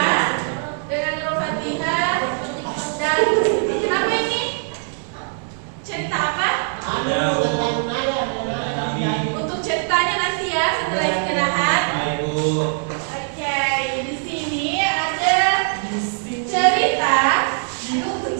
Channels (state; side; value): silent; left; 64 dB below the other